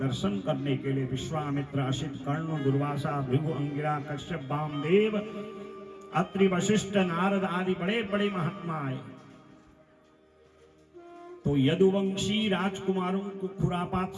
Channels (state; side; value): identical; both; correlation 1.00